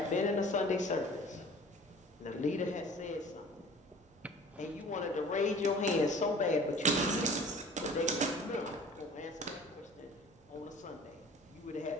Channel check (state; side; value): normal; both; correlation 0.46